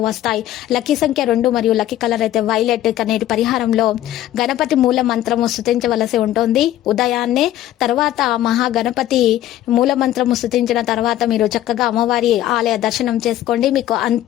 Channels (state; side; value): quieter; right; 13.3 dB